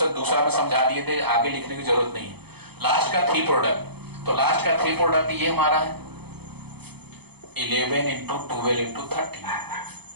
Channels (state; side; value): late; left; 0.98 ms